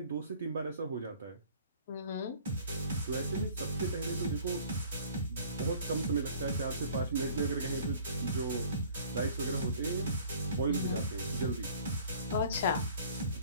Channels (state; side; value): inverted; both; correlation -0.51